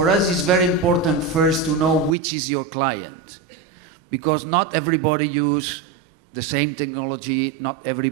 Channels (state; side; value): drops out; left; at 2.1 s